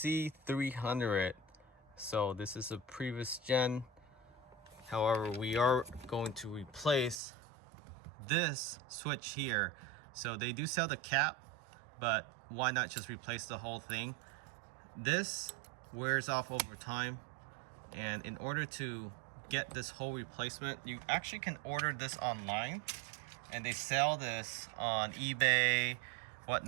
So this is a previous gen. However, we are going to replace this switch here. So they do sell the cap, but why not just replace the whole thing? This wears off over time, and in order to get this whole replacement, you actually can order this online, and they sell this on eBay,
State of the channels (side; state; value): left; drops out; at 7.2 s